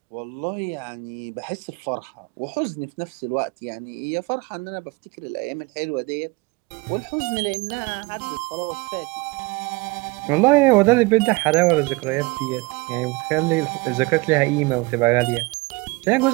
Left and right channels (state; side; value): quieter; left; 25.0 dB